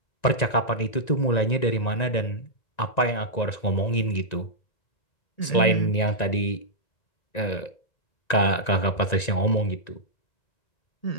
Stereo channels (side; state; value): right; late; 1.9 ms